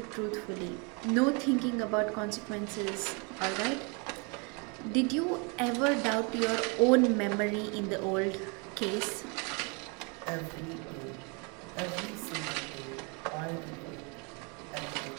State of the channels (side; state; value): left; quieter; 32.7 dB